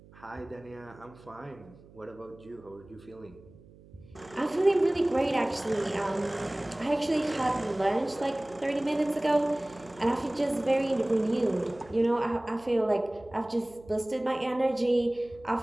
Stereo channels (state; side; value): noise; right; hum, 23 dB below the sound